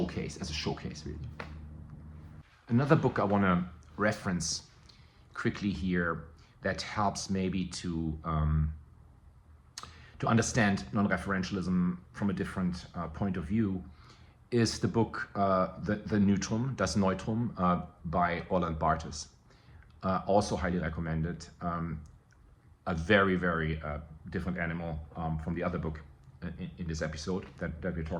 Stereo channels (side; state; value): both; identical; correlation 1.00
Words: as a showcase, really. Another book I want to reference quickly here that helps maybe to understand non-referentialism from a different point of view is the book The Neutrum, Das Neutrum, by Roland Barthes. Also highly recommended. A very, very different animal from the other book in this episode that we're